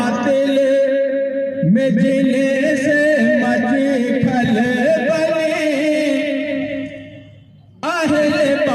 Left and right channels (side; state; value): both; identical; correlation 1.00